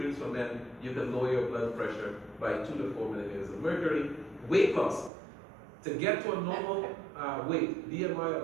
for men, you can lower your blood pressure by 2 to 4 millimeters of mercury. Weight loss. To get to a normal weight, BMI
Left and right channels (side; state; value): left; drops out; at 5.1 s